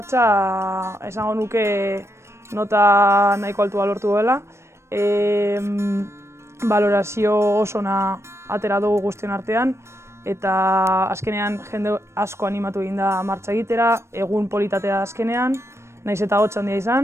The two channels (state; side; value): late; left; 0.13 ms